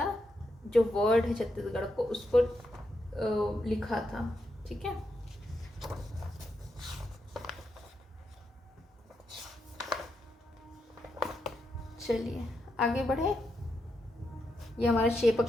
जो वर्ड है छत्तीसगढ़ को, उसको लिखा था। ठीक है, चलिए आगे बढ़े। ये हमारा शेप ऑफ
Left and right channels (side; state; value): both; normal; correlation 0.83